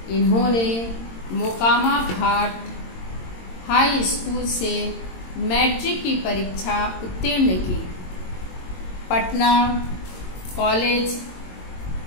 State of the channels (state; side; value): late; right; 22 ms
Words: इन्होंने मोकामा घाट हाई स्कूल से मैट्रिक की परीक्षा उत्तीर्ण की। पटना कॉलेज